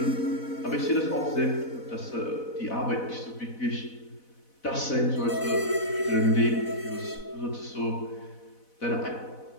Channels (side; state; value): right; late; 4.1 ms